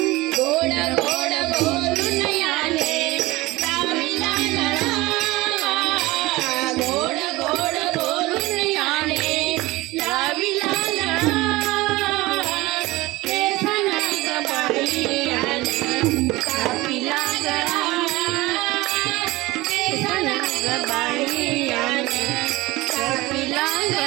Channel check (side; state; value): left; quieter; 20.2 dB